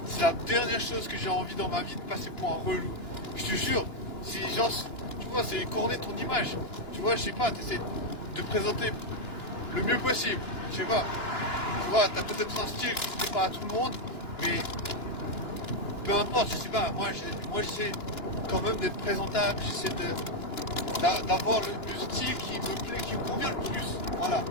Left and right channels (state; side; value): late; right; 2.9 ms